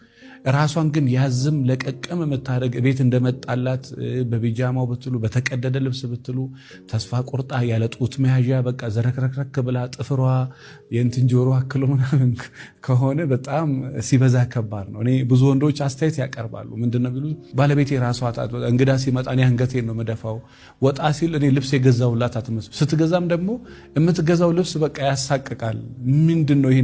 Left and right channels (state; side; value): identical; both; correlation 1.00